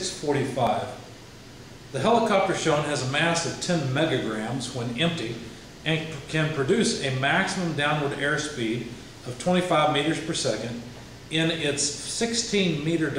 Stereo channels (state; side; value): identical; both; correlation 1.00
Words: The helicopter shown has a mass of 10 megagrams when empty and can produce a maximum downward airspeed of 25 meters per second in its 16-meter